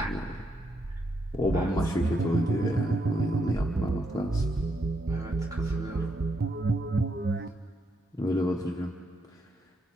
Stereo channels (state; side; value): normal; both; correlation 0.78